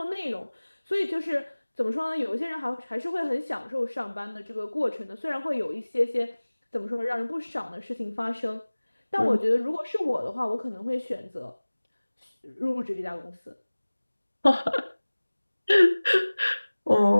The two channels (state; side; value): inverted; both; correlation -1.00